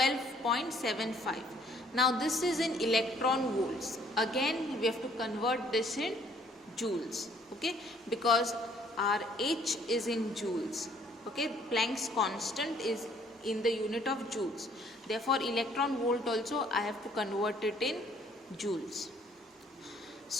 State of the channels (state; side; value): normal; both; correlation 0.61